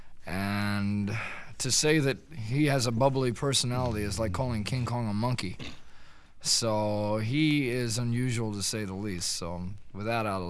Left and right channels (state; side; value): identical; both; correlation 1.00